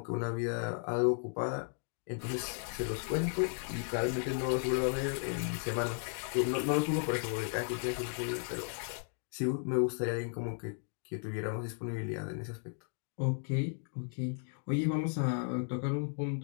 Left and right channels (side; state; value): right; silent; 54 dB below the other